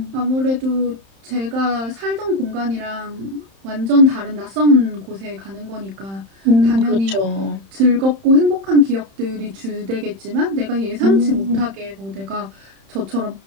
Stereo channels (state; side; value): late; left; 31 ms